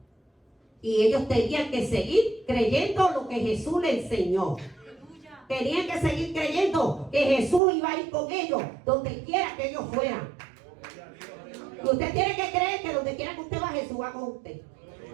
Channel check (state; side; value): drops out; left; at 7.6 s